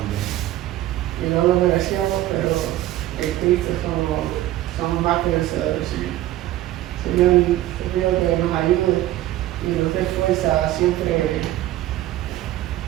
no lo merecíamos, pero en Cristo somos más que vencedores, Señor. Señor, te pido que nos ayude y nos dé fuerza a siempre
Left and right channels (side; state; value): left; quieter; 14.7 dB